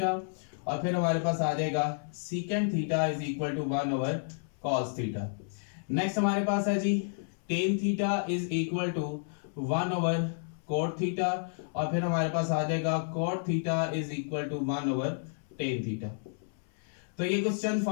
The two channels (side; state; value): right; silent; 57 dB below the other